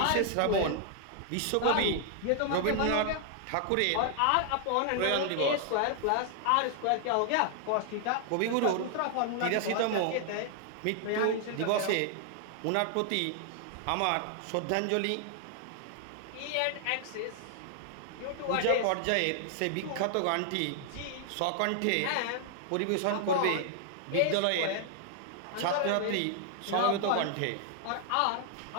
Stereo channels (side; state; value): both; different; correlation 0.00